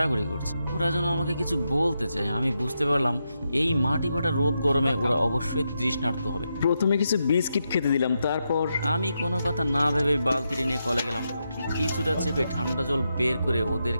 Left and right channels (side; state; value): both; inverted; correlation -0.85